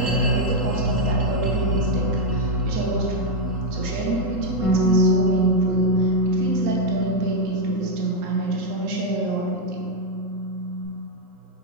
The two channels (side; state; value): left; late; 3.8 ms